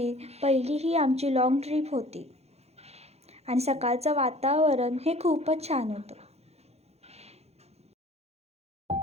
पहिली ही आमची लाँग ट्रिप होती आणि सकाळचं वातावरण हे खूपच छान होतं.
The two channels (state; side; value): late; left; 0.31 ms